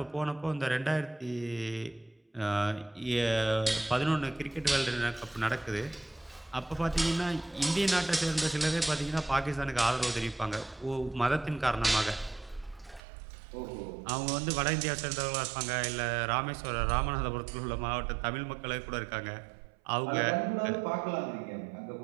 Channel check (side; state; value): left; drops out; at 13.0 s